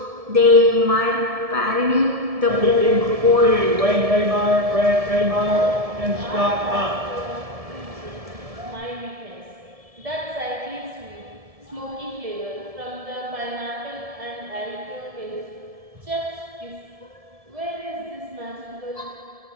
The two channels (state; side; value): late; left; 1.7 ms